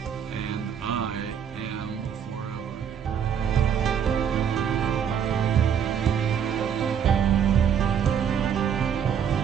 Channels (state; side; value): quieter; left; 8.0 dB